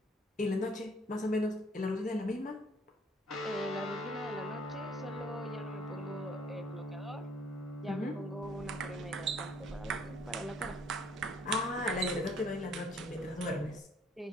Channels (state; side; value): normal; both; correlation 0.61